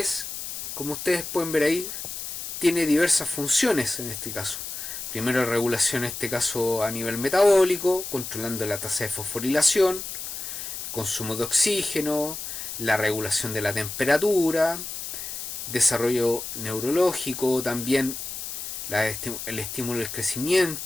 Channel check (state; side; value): noise; left; hiss, 7 dB below the sound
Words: como ustedes pueden ver ahí, tiene diversas funciones en este caso. Primero, regulación en este caso a nivel metabólico, controlando la tasa de fosforilación, el consumo de oxígeno, la regulación de la temperatura, desarrollo neurológico, también el estímulo del